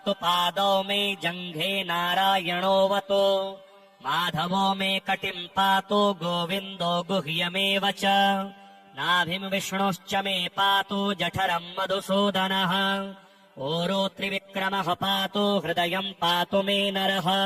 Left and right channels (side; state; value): both; identical; correlation 1.00